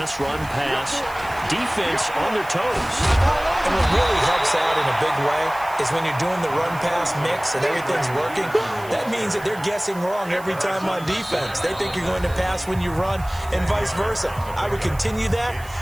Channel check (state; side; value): noise; right; hiss, 20 dB below the sound